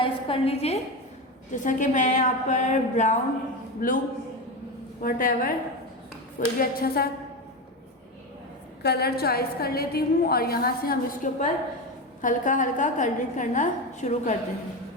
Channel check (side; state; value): both; normal; correlation 0.18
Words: कर लीजिए, जैसा कि मैं यहाँ पर ब्राउन, ब्लू, व्हाटएवर कोई भी अच्छा सा कलर चॉइस कर लेती हूँ। और यहाँ से हम इसके ऊपर हल्का हल्का कलरिंग करना शुरू करते